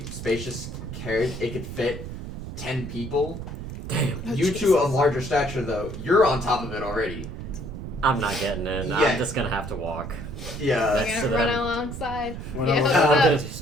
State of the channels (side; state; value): right; noise; rumble, 9 dB below the sound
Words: spacious carriage. It could fit 10 people. Damn. Oh, You two of Jesus. larger stature, though, you're on top of it already. I'm not getting in. Yeah. I'm just gonna have to walk. Yeah. You're to gonna run them. alongside. Run Yeah, alongside. what's I'm up? gonna